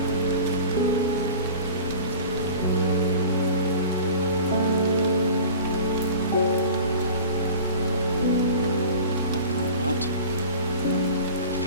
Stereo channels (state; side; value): inverted; both; correlation -0.40